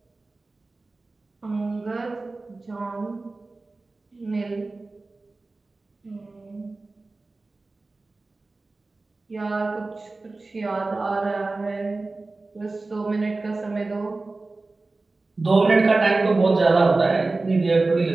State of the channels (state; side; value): quieter; left; 3.4 dB